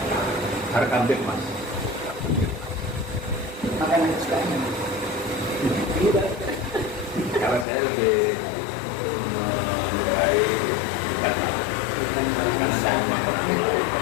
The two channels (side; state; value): right; drops out; at 7.7 s